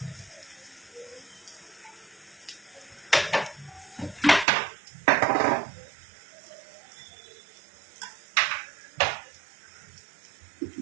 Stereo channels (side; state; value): left; drops out; at 4.5 s